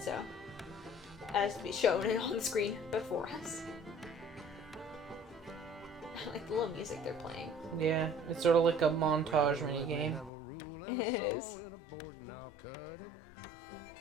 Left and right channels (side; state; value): right; drops out; at 10.3 s